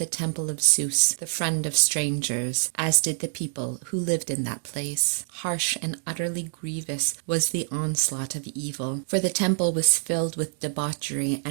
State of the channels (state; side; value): silent; left; digital silence